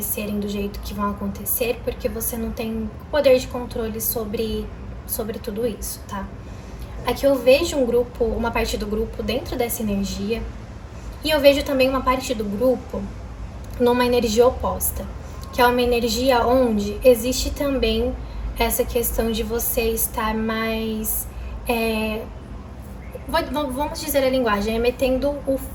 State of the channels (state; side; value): identical; both; correlation 1.00